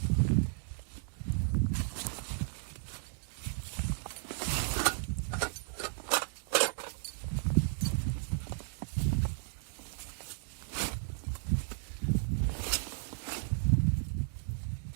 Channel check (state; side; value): silent; left; digital silence